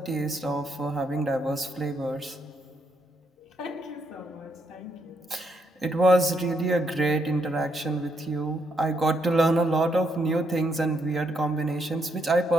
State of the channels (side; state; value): both; normal; correlation 0.76